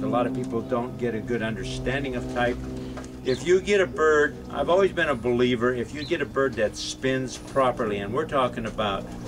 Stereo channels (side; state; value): both; identical; correlation 1.00